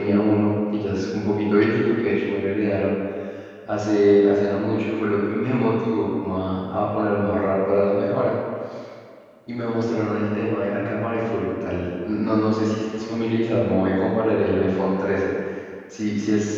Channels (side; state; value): both; identical; correlation 1.00